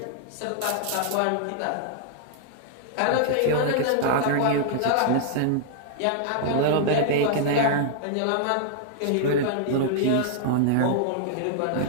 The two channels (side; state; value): both; different; correlation -0.01